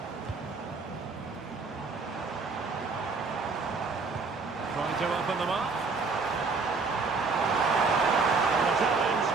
Trying to open them up. And the challenge,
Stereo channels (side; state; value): left; quieter; 4.4 dB